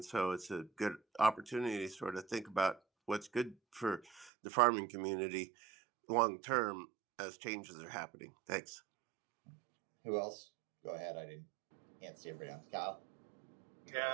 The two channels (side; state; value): left; drops out; at 4.3 s